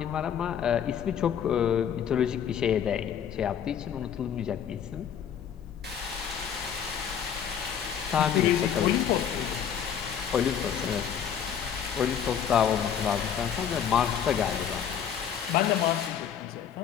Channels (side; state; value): right; quieter; 8.6 dB